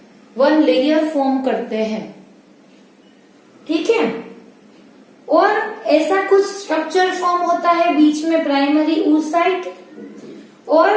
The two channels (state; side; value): identical; both; correlation 1.00